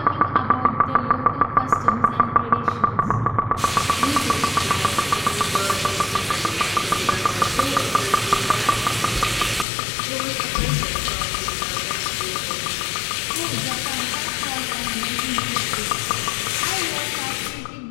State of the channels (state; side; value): drops out; right; at 9.7 s